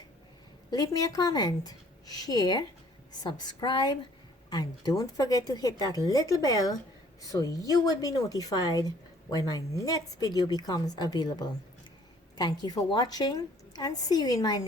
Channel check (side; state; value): both; normal; correlation 0.58